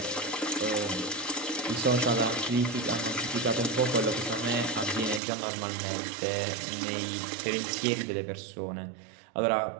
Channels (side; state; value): left; drops out; at 5.2 s